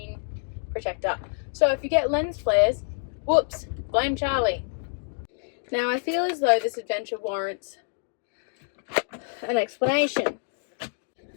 protector. So if you get lens flares, whoops, blame Charlie. Now I feel as though this adventure warrants an explanation.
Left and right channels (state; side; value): silent; right; 59 dB below the other